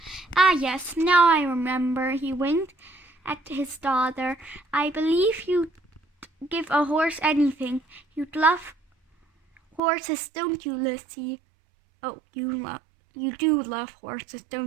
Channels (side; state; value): left; drops out; at 9.8 s